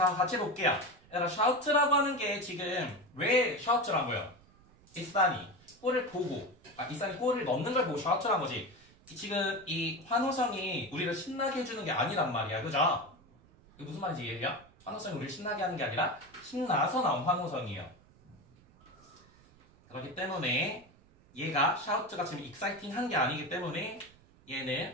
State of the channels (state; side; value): noise; right; rumble, 27 dB below the sound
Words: 같이 볼게요. 얘들아, shout라고 하는 게 지금 왜 shout란 거예요? 이산이 골을 보고, 이산이 골을 넣는 걸 보고 shout란 거지. 지금 이 환호성이 우리를 신나게 해주는 게 아니란 말이야. 그죠? 이게 무슨 말인지 이해해요? 환호성이 우리를 신나게 하는 게 아니라 신나서 나온 환호성이에요. 그렇기 때문에 얘가 shout가 지금 exciting 한 게 아니기 때문에